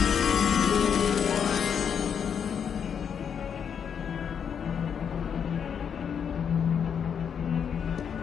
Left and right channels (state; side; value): quieter; right; 7.5 dB